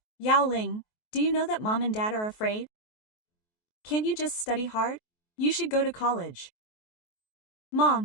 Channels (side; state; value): right; late; 23 ms